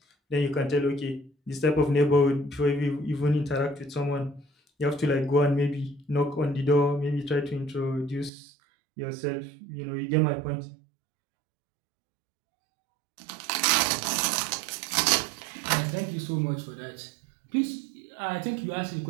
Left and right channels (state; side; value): drops out; left; at 8.3 s